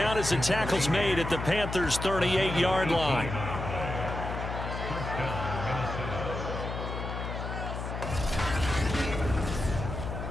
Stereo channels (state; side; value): noise; left; hum, 5 dB below the sound